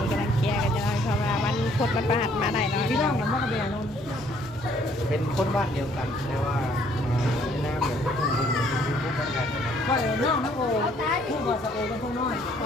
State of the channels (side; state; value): both; normal; correlation 0.63